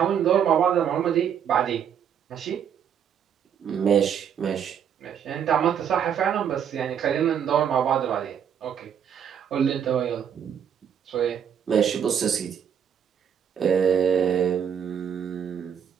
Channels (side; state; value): left; quieter; 8.3 dB